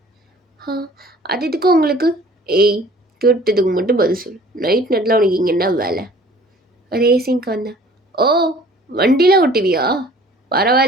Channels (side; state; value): both; normal; correlation 0.51